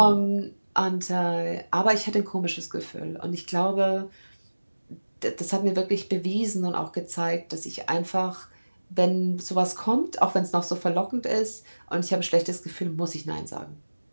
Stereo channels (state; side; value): inverted; both; correlation -1.00